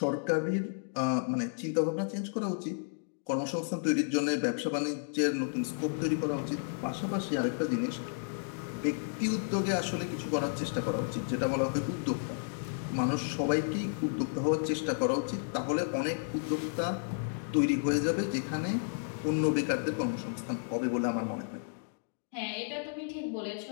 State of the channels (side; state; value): right; silent; digital silence